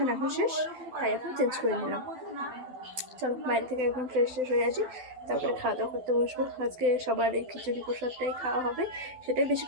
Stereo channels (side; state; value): left; late; 12 ms